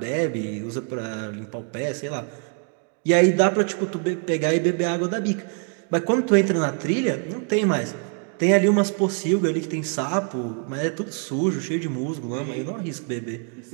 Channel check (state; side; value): quieter; left; 39.6 dB